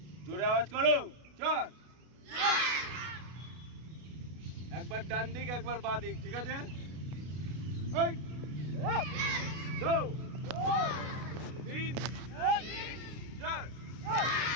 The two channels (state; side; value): late; left; 32 ms